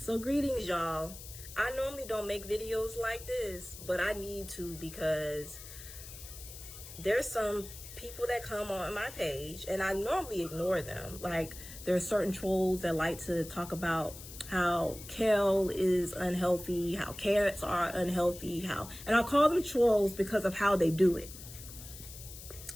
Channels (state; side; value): noise; left; hiss, 14 dB below the sound